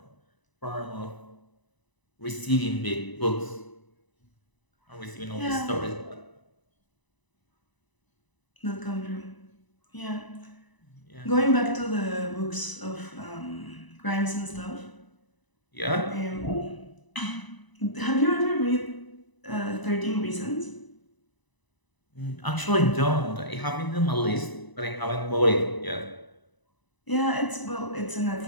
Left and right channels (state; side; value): late; right; 1.0 ms